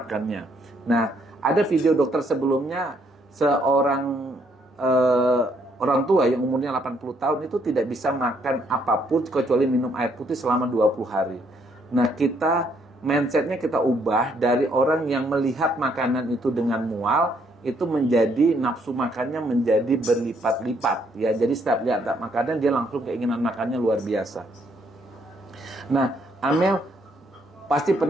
Nah, ada video dokter sebelumnya, seorang orang tua yang umurnya 80 tahun itu tidak bisa makan apapun kecuali minum air putih selama 20 hari. Nah, mindsetnya kita ubah dari orang yang melihat makanan itu dengan mual, itu menjadi nafsu makannya menjadi berlipat-lipat, ya. Jadi setiap lihat makanan dia langsung keinginan makannya luar biasa. Nah, Amel pasti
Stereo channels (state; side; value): normal; both; correlation 0.70